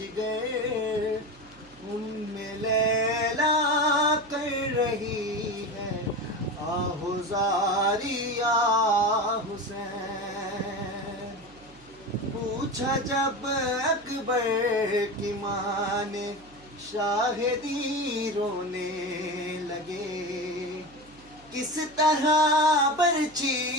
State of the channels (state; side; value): noise; right; hum, 25 dB below the sound